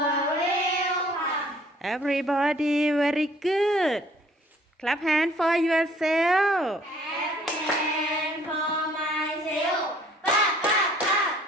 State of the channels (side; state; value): both; normal; correlation 0.58